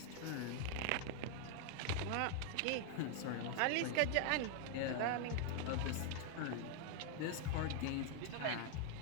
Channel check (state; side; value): different; both; correlation 0.00